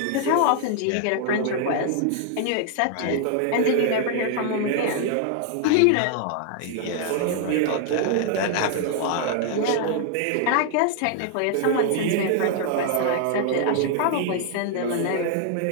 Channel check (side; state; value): both; different; correlation 0.00